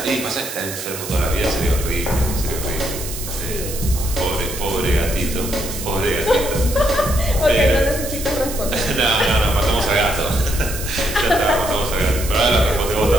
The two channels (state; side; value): noise; right; hiss, 8 dB below the sound